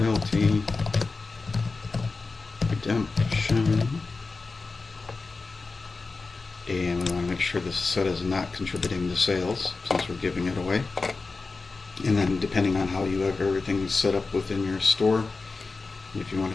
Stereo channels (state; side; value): quieter; right; 4.0 dB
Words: redemption, and we want to make sure this is set as not contributing to sales since we're giving it away. And then depending on how you have everything set up within your store, if you want